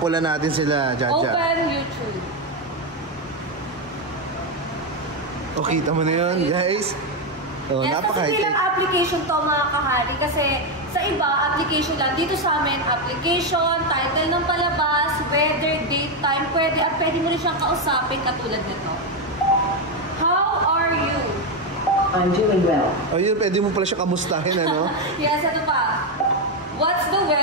na natin sila, Jaja. Open YouTube. O, kita mo na yun guys. Oh, Yes, kasi napaka-high-tech. bilang application to mga kahari. Kasi sa iba, application lang. Dito sa amin, application, title ng palabas, weather, date, time, pwede. At pwede mo rin siyang kausapin katulad nito. How are you? I'm doing well. O yun, pwede mo pala siya kamustahin, ano? Yes, ito pa. What's the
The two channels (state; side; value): normal; both; correlation 0.07